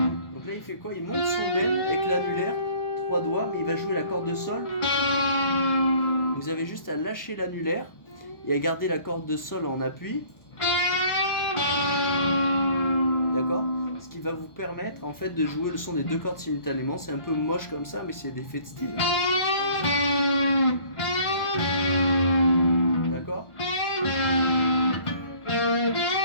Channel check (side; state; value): right; late; 1.0 ms